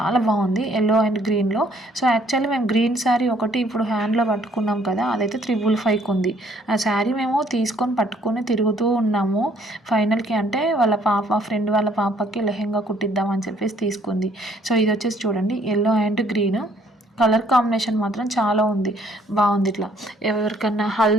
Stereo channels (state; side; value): normal; both; correlation 0.63